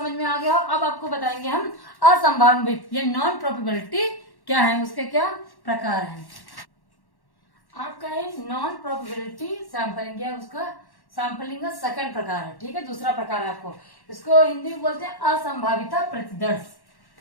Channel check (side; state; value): right; late; 1.1 ms